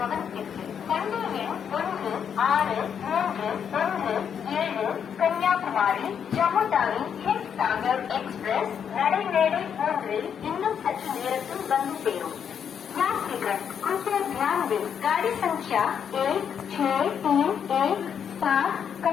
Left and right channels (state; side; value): quieter; right; 7.8 dB